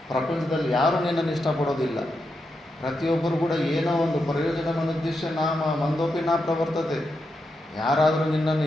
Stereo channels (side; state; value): both; normal; correlation 0.85